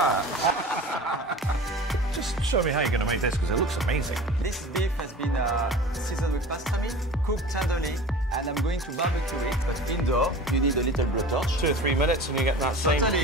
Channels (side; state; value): both; normal; correlation 0.38